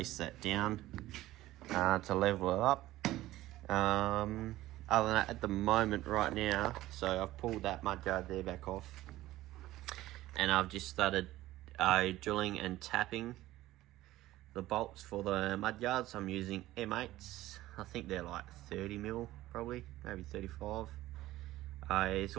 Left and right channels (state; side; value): quieter; left; 16.1 dB